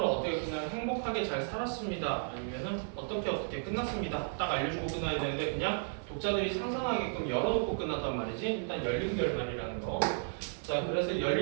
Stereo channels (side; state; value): left; silent; 55 dB below the other